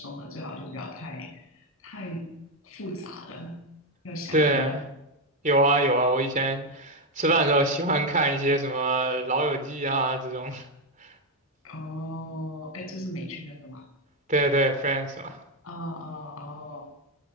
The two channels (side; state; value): both; normal; correlation 0.06